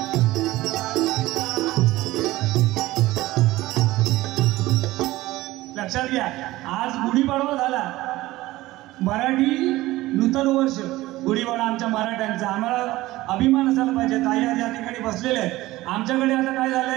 लक्षात घ्या. आज गुढीपाडवा झाला, मराठी नूतन वर्ष, गुढीपाडवा आमच्या मराठ्यांचा. आम्हाला अभिमान असायला पाहिजे. ताई आज या ठिकाणी बसलेले आहेत. आमच्याकडे आता काय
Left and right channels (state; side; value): quieter; left; 17.8 dB